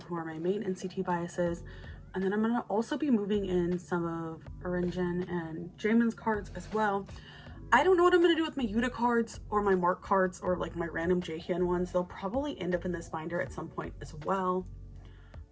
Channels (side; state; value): both; identical; correlation 1.00